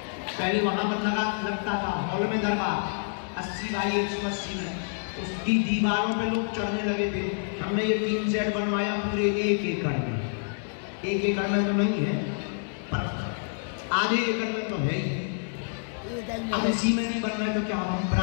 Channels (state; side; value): silent; right; digital silence